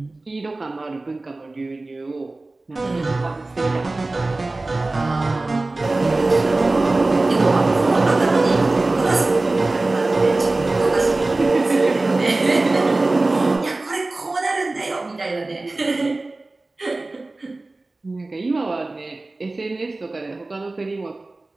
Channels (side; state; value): left; quieter; 3.1 dB